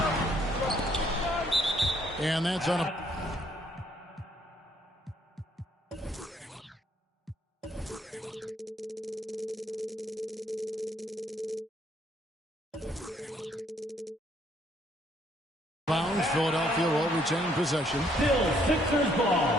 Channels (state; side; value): normal; both; correlation 0.67